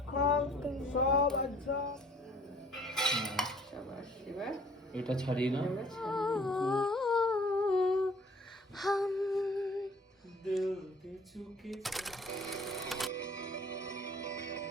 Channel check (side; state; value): both; normal; correlation 0.55